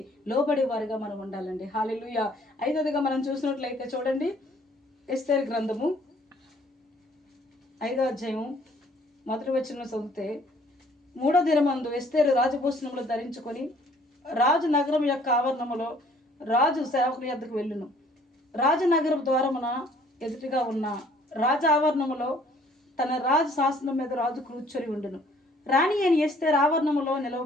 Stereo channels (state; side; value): normal; both; correlation 0.59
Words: లోబడేవారుగా మనం ఉండాలండి. హల్లెలూయా. ఐదవదిగా మనం చూసినట్లయితే చూడండి, ఎస్తేరు గ్రంథము 5వ అధ్యాయం 1వ వచనం చదివితే, 3వ దినమందు ఎస్తేరు రాజభూషణములు ధరించుకొని రాజు నగరం యొక్క ఆవరణములో రాజు సేవకుని యొద్దకు వెళ్ళును. రాజనగరం ద్వారమున ఎదుటిగా ఉన్న రాజ ఆవరణములో తన రాజు శాసనం మీద రాజు కూర్చొని ఉండును. రాణి అని ఎస్తేరు ఆవరణములో